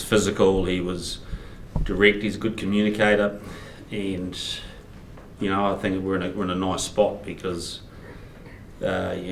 physical, he was direct, he's a good communicator, and I think we're in a nice spot because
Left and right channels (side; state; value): both; identical; correlation 1.00